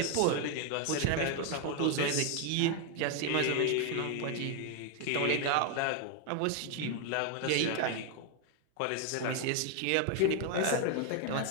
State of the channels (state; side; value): different; both; correlation 0.01